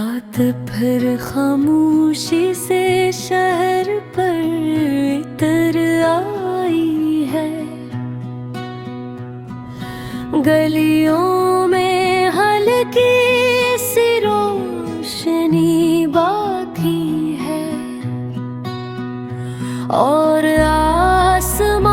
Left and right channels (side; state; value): both; identical; correlation 1.00